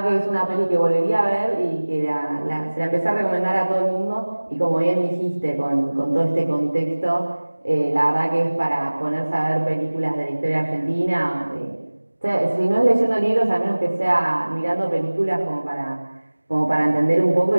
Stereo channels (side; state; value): both; inverted; correlation -1.00